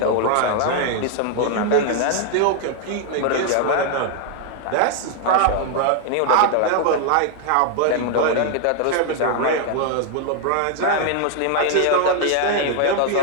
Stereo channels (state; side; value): different; both; correlation 0.00